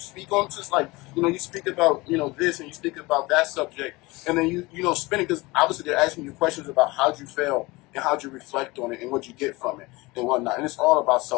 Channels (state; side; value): quieter; right; 22.7 dB